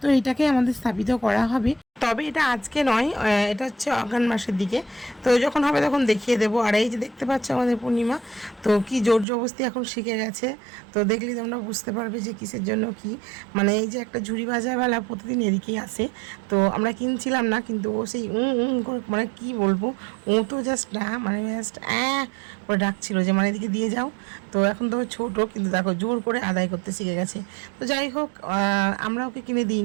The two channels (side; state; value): left; drops out; at 9.2 s